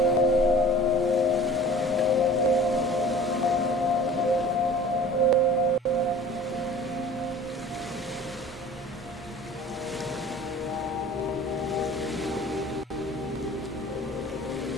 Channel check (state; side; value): normal; both; correlation 0.44